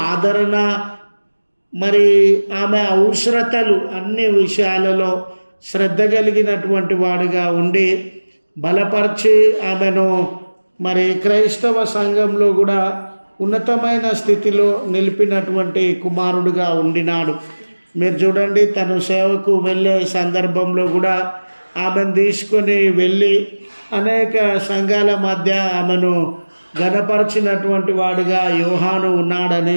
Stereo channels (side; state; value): both; inverted; correlation -1.00